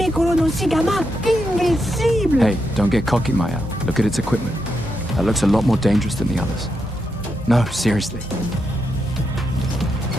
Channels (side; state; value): both; normal; correlation 0.83